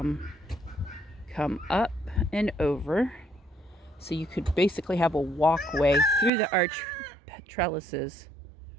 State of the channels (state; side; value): drops out; left; at 6.3 s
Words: up and over. So you could basically have a walkway through the arch trellises